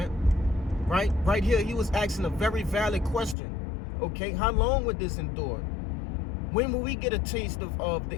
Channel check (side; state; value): right; drops out; at 3.4 s